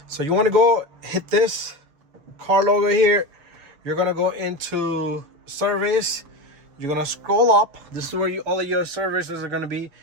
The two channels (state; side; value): late; left; 6.8 ms